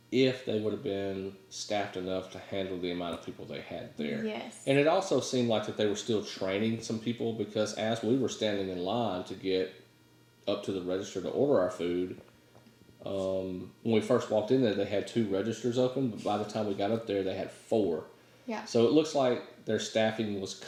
if they would have been staffed enough to handle the amount of people they had there. Yes. And it also seemed like that they were still training some people, because as we were standing in line to get up to the register to order our food, when we first walked in there, they had 2 registers open, but by the time we got up there, they had 4. Yeah. So it looks like their staffing was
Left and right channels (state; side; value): identical; both; correlation 1.00